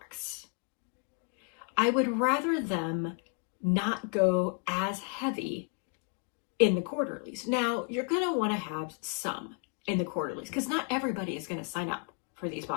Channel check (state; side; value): quieter; right; 38.4 dB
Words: I would rather them not go as heavy in the quarterlies. Now, you're going to want to have some in the quarterlies because not everybody is going to sign up for these